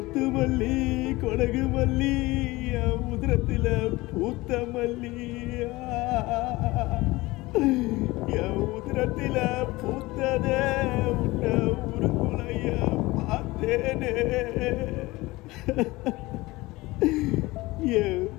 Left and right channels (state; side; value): quieter; right; 20.7 dB